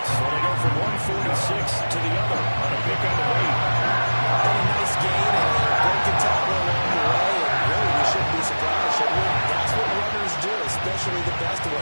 they go from 146 to the other on a pick on the way. A nice gain and a broken tackle along the way. And really, we shouldn't be surprised, should we? That's what runners do, especially the best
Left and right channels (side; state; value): both; inverted; correlation -1.00